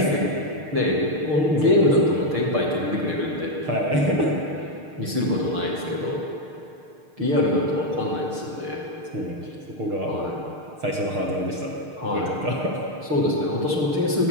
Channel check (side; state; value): left; late; 6.6 ms